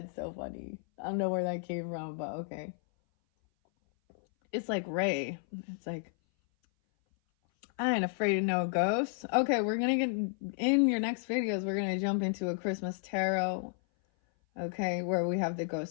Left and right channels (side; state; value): right; silent; 56 dB below the other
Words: so funny. I don't know where that came from, but okay. It's like Ray. It's like I ain't afraid of no ghosts. Okay, we're gonna get in your next videos. We're gonna jump into a Christmas tarot. Okay, where we have the